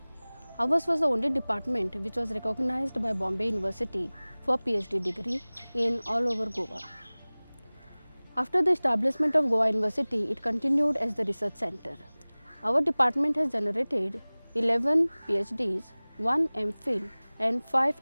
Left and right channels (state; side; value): inverted; both; correlation -1.00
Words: Ours was the only department which was recognized by Bombay University for PhD degree in all over Goa. After the establishment of Goa University, it continued as the research center. Our department has generated 11 PhDs, 1 MPhil and